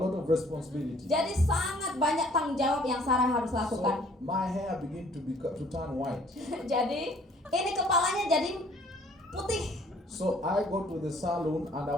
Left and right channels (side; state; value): both; normal; correlation 0.58